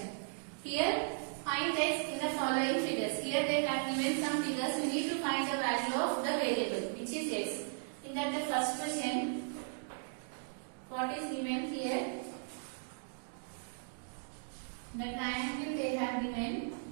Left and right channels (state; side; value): silent; left; digital silence